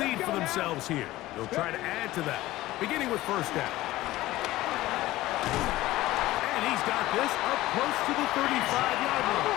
lead for themselves here. They'll try to add to that, beginning with 1st down. And he's got this up close to the 35-yard line.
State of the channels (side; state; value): right; quieter; 16.9 dB